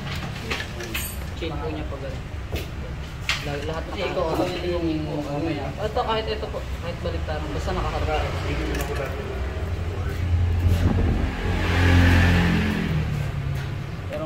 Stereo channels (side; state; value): both; identical; correlation 1.00